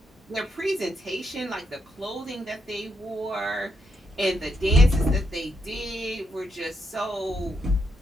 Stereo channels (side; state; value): both; normal; correlation 0.80